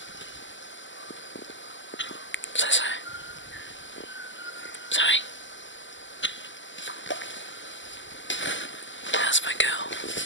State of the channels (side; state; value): right; late; 0.54 ms